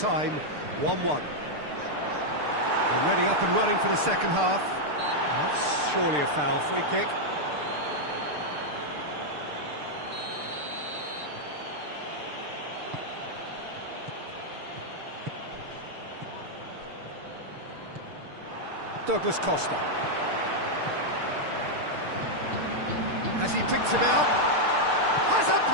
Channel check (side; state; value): left; late; 6.7 ms